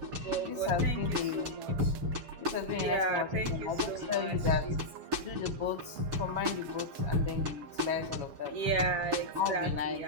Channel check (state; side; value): late; left; 7.3 ms